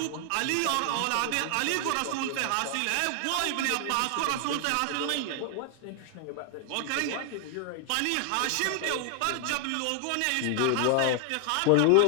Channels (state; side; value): different; both; correlation 0.00